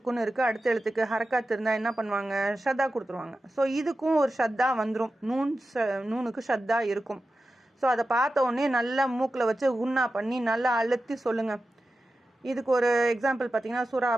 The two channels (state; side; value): normal; both; correlation 0.93